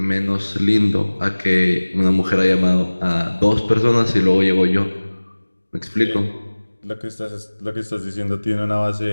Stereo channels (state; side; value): inverted; both; correlation -1.00